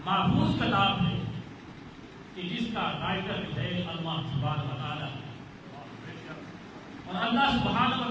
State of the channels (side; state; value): both; identical; correlation 1.00